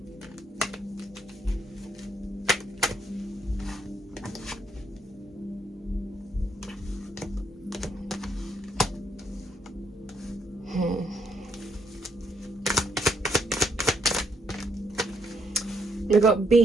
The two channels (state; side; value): normal; both; correlation 0.73